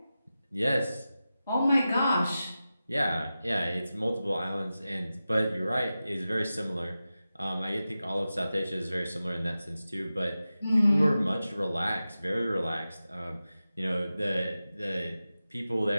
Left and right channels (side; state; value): both; inverted; correlation -0.94